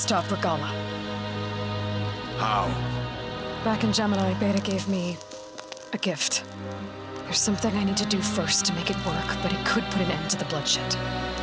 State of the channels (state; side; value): identical; both; correlation 1.00